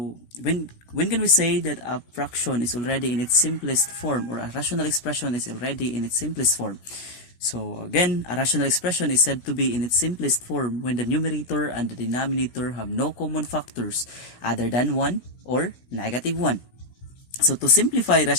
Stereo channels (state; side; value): late; right; 17 ms